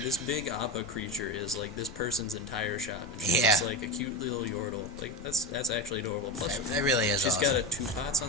big Appa creature is like this person's entire shop. And she's just like a cute little Yordle. Like, that's actually adorable. Plus, that really is she's awesome. got 2 pots on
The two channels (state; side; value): normal; both; correlation 0.19